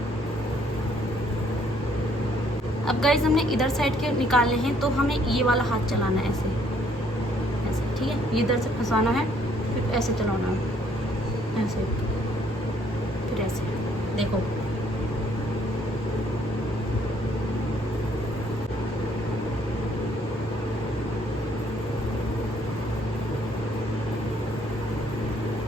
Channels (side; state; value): both; normal; correlation 0.65